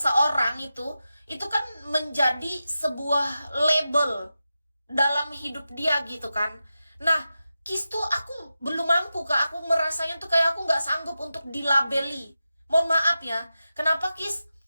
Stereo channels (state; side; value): inverted; both; correlation -0.92